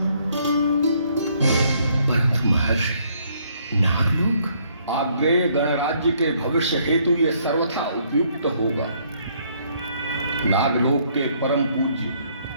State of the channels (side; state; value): both; inverted; correlation -0.67